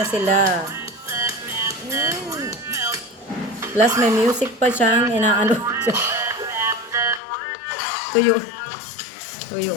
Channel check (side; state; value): right; drops out; at 7.2 s